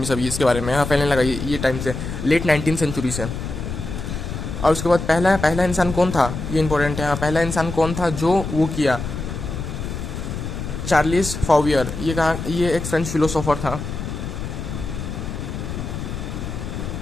सभी इसके बारे में। हाँ, फैलने लगा ये टाइम से, लेट 19th सेंचुरी से। और उसके बाद पहला इंसान कौन था, ये इंपॉर्टेंट है। हाँ, पहला इंसान कौन था जो वो किया, चार्लिस फॉवियर। ये एक फ्रेंच फिलोसोफर था।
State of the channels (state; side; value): noise; left; rumble, 6 dB below the sound